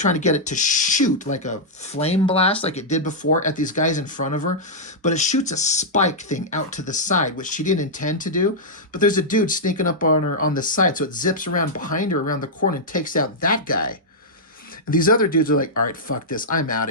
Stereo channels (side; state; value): both; normal; correlation -0.08